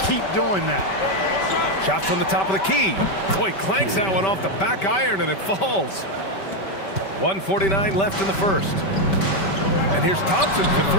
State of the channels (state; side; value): late; right; 5.2 ms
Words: keep doing that. Shot from the top of the key. Boy, clanks that one off the back iron and it falls. 1:49 left in the first. And here's Thompson for